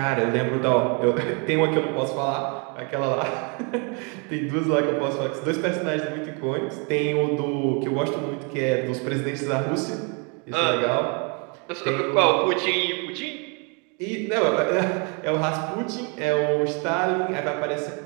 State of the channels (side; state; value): left; quieter; 34.7 dB